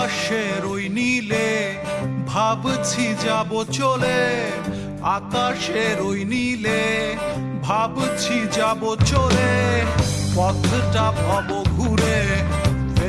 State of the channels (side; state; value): both; identical; correlation 1.00